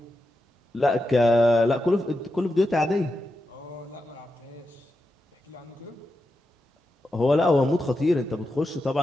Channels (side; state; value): both; normal; correlation 0.88